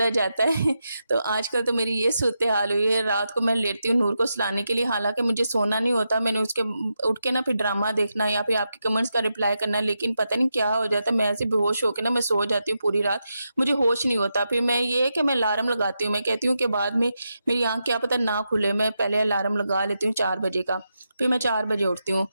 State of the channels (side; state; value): both; inverted; correlation -0.86